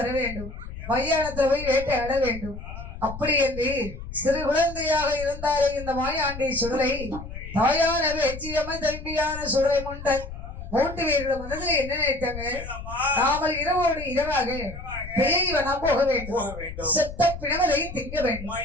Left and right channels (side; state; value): left; noise; rumble, 11 dB below the sound